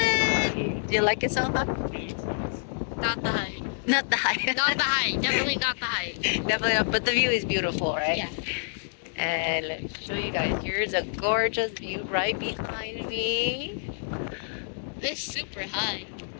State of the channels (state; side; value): silent; right; digital silence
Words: do you like it so far? Not the height. Not the high. Not the height. Definitely not the height. Definitely, but the view is beautiful, right? Yeah. And let me show you guys. Here's a gorgeous view right behind me. It's super high.